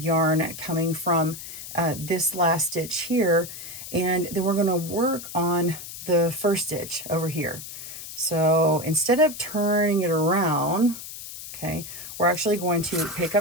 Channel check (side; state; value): left; noise; hiss, 11 dB below the sound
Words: coming from this last stitch here, and then we're going to work on the first stitch over here. So instead of turning it around, okay, we're actually going to pick